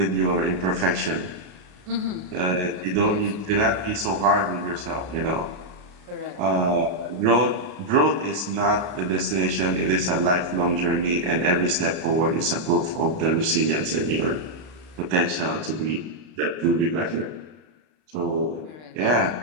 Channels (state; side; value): late; left; 33 ms